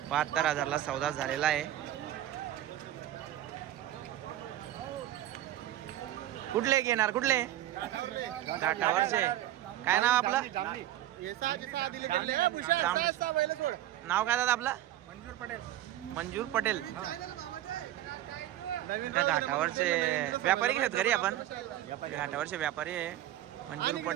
72,000ला सौदा झालेला आहे. कुठले घेणार, कुठले घाटावरचे? काय नाव आपलं? नाव काय दादा आपलं? मंजूर पटेल. त्या घाटावरचे व्यापारी घेत घरी आपण, घाटावरचे व्यापारी आहे मंजूर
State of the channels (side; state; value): left; quieter; 13.2 dB